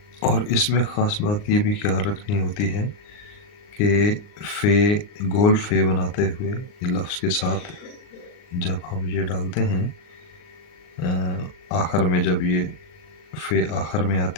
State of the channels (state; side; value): late; right; 39 ms